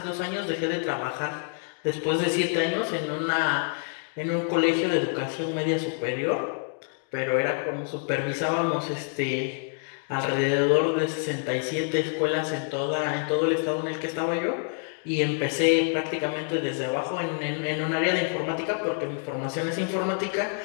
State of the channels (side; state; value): right; silent; 56 dB below the other